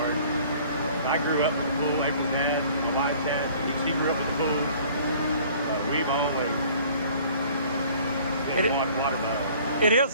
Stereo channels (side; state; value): both; inverted; correlation -0.52